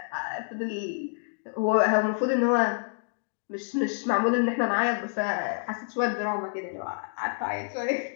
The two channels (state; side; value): silent; right; digital silence